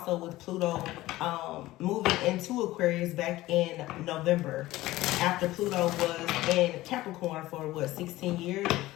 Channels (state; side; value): quieter; right; 17.2 dB